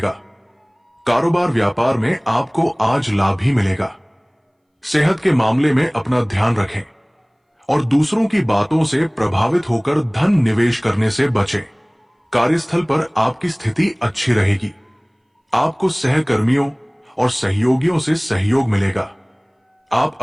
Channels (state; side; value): identical; both; correlation 1.00